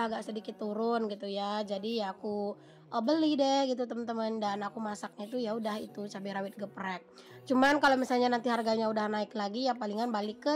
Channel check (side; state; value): both; identical; correlation 1.00